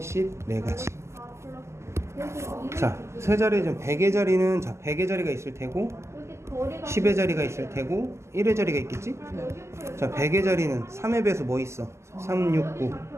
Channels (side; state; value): left; late; 0.13 ms